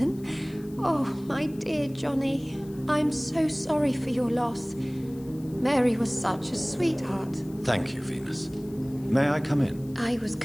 Oh, my dear Johnny. I'm so sorry for your loss. Mary was such a sweetheart. Thank you, Venus. May I come in? I was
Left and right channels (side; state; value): left; noise; hiss, 25 dB below the sound